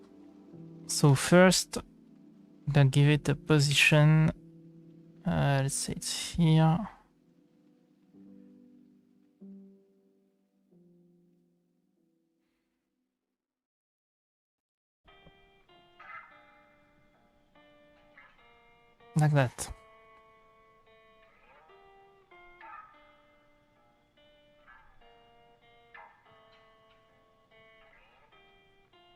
So first, I'm gonna give it a position. Let's say it's here. Like that.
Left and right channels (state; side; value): identical; both; correlation 1.00